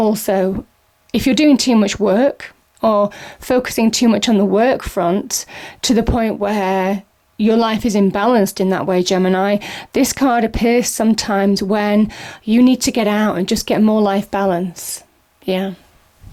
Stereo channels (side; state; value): both; identical; correlation 1.00